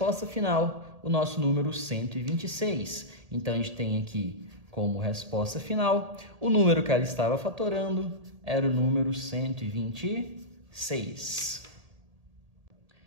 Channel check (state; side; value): late; left; 1.8 ms